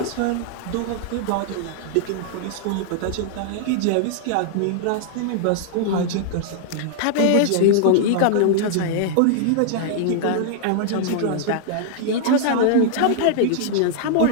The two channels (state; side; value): different; both; correlation -0.01